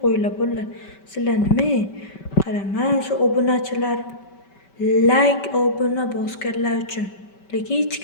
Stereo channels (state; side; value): late; right; 5.2 ms